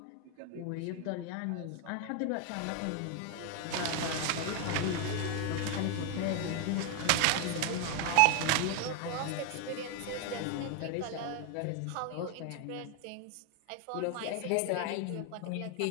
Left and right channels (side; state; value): both; different; correlation 0.00